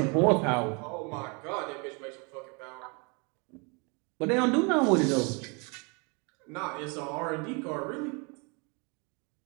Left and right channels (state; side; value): quieter; left; 32.2 dB